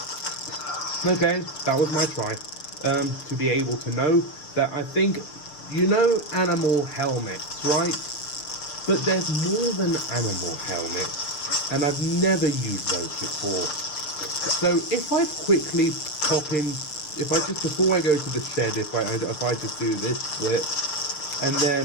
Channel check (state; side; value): late; right; 6.7 ms